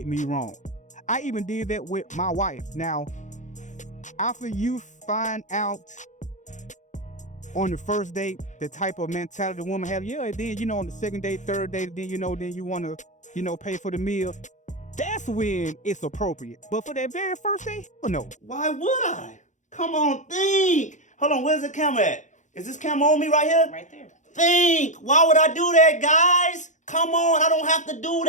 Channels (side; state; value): right; late; 0.35 ms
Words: me wrong. I even did that with my wife. Now, after you find out on the first date the type of mentality the woman has, and then, on the second date, third date, then, then you want to, pay for the meal. That's when it's appropriate. But for that very first date, no. Why would I? Come on, think. Hold on, where's the camera at? Is this camera on me right here? Right there. Think. Why would I do that, guys? Come on, I don't have to do